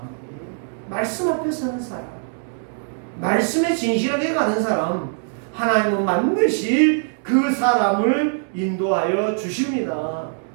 말씀 앞에 서는 사람, 말씀에 진실하게 가는 사람, 하나님은 반드시 그 사람을 인도하여 주십니다.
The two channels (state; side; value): silent; left; digital silence